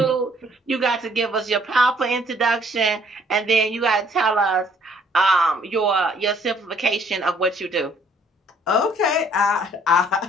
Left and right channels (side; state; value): both; normal; correlation 0.62